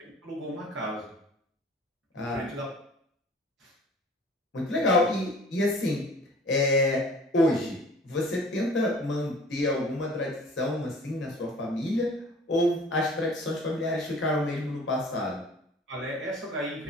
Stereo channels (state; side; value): normal; both; correlation 0.48